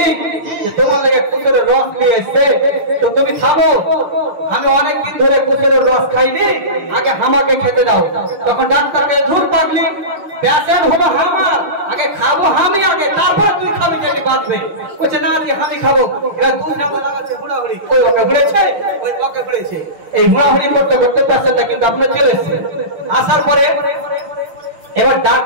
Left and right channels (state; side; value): late; left; 5.7 ms